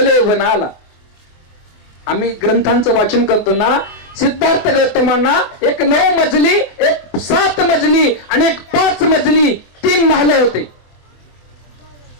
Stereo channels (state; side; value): late; right; 24 ms